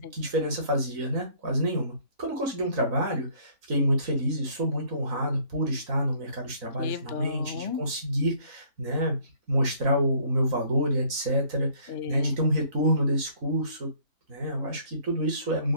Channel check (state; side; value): late; left; 3.9 ms